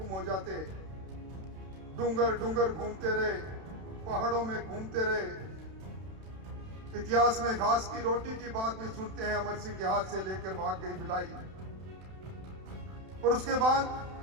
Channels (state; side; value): late; left; 31 ms